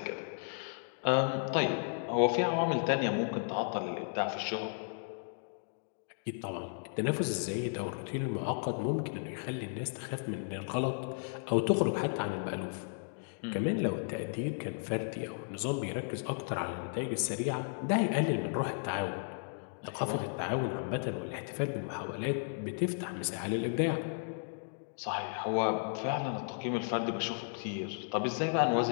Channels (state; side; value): silent; right; digital silence